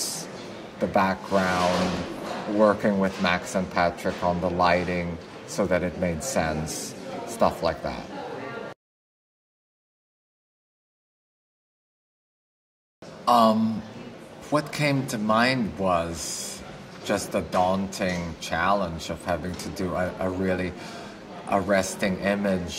the background, working with Max and Patrick on the lighting so that it made sense, stuff like that. What came to mind was just the daunting challenge of having to do a really arresting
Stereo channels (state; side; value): identical; both; correlation 1.00